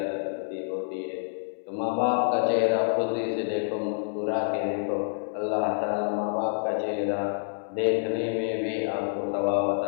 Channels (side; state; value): right; silent; 60 dB below the other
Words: نصیب ہوتی ہے؟ تو ماں باپ کا چہرہ خوشی سے دیکھو، مسکرا کے دیکھو، اللہ تعالیٰ ماں باپ کا چہرہ دیکھنے میں بھی آپ کو ثواب